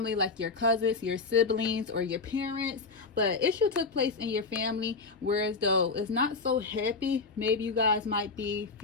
like your cousins, your siblings, or your parents. But issue took place in your family, whereas though it's not so happy. Maybe you guys might be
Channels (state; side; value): quieter; right; 4.3 dB